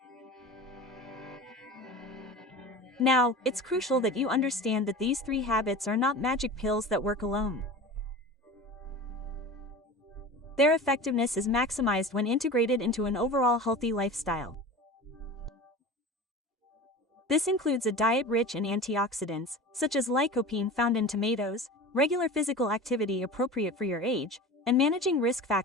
Now, it's crucial that you understand that these 3 habits are not magic pills that work alone. Their effectiveness is maximized when integrated into an overall healthy lifestyle. This includes a diet rich in antioxidants, such as lycopene found in tomatoes, regular physical activity appropriate for your age, and managing risk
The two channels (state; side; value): normal; both; correlation 0.34